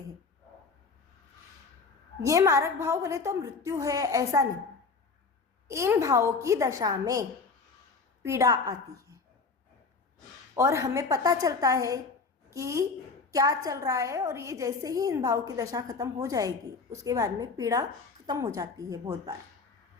ये मारक भाव बोले तो मृत्यु है ऐसा नहीं, इन भावों की दशा में पीड़ा आती है और हमें पता चलता है कि क्या चल रहा है, और ये जैसे ही इन भाव की दशा खत्म हो जाएगी उसके बाद में पीड़ा खत्म हो जाती है। बहुत बार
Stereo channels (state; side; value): quieter; right; 4.5 dB